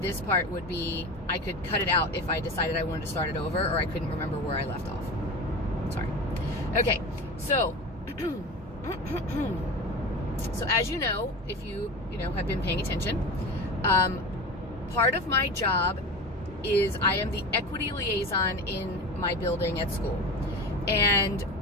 this part would be, I could cut it out if I decided I wanted to start it over, or I couldn't remember where I left off. Sorry. Okay, so so as you know, if you have been paying attention, part of my job is I am the equity liaison in my building at school. And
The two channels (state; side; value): normal; both; correlation 0.29